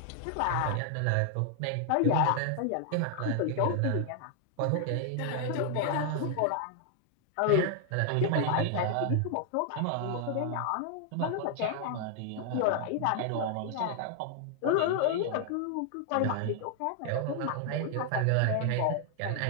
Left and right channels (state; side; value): different; both; correlation 0.00